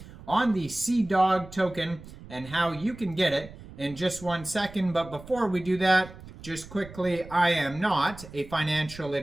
on the Cdog token and how you can get it in just 1 second. But before we do that, just quickly, I am not a financial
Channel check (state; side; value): noise; right; rumble, 17 dB below the sound